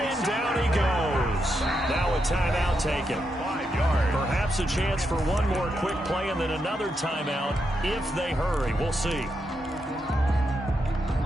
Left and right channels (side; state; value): both; normal; correlation 0.83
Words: down he goes. Now a timeout taken. 5 yards. Perhaps a chance for one more quick play and then another timeout if they hurry. We'll see.